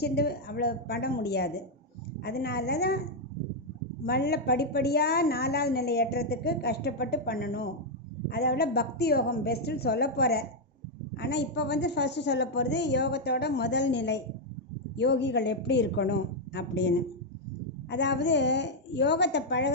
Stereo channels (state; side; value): normal; both; correlation -0.01